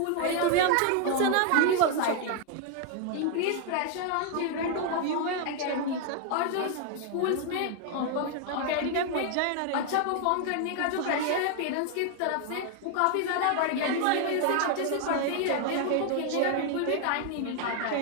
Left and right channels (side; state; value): both; different; correlation 0.00